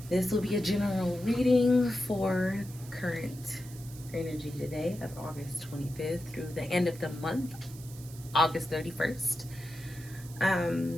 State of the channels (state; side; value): noise; right; hiss, 18 dB below the sound